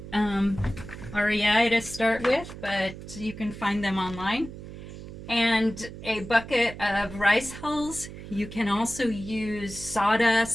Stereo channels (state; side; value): noise; right; hum, 12 dB below the sound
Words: REI to start with, but you can find them online. And a bucket of rice hulls. You can also use